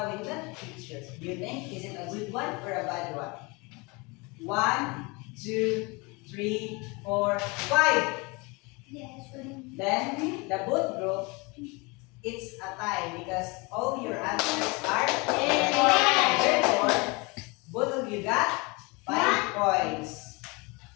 in that picture, do you think is it a good one or a bad one? 1, 2, 3, 4, 5. Yes, Then the both group, it's a tie because all your answers are correct. Therefore, both of you got 5 points.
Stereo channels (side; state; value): right; quieter; 27.4 dB